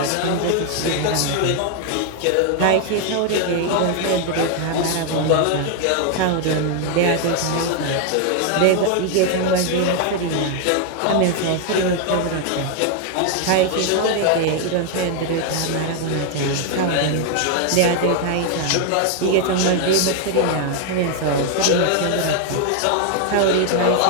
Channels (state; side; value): different; both; correlation 0.00